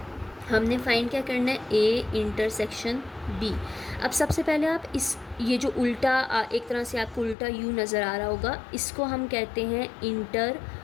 हमने फाइंड क्या करना है, A इंटरसेक्शन B। अब सबसे पहले आप ये जो उल्टा एक तरह से आपको उल्टा U नज़र आ रहा होगा, इसको हम कहते हैं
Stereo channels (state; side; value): drops out; right; at 7.4 s